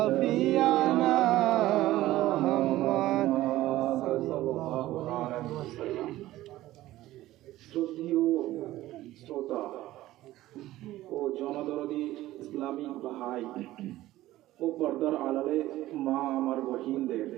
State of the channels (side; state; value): left; quieter; 15.7 dB